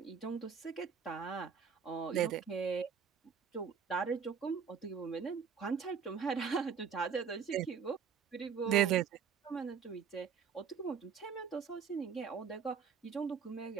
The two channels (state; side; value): quieter; left; 6.8 dB